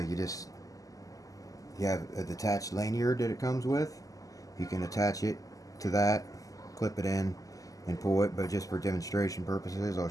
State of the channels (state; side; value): late; right; 0.17 ms